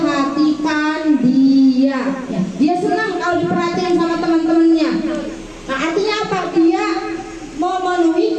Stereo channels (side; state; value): both; identical; correlation 1.00